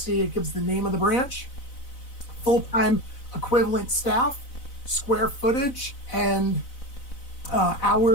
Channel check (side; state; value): right; late; 4.0 ms